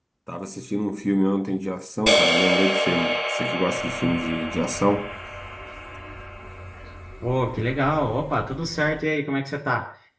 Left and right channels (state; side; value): identical; both; correlation 1.00